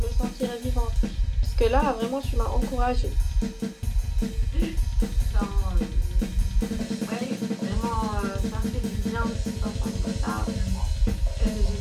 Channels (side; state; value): both; identical; correlation 1.00